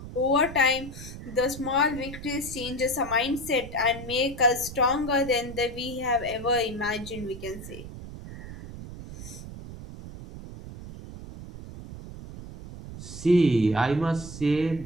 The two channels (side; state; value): right; noise; rumble, 12 dB below the sound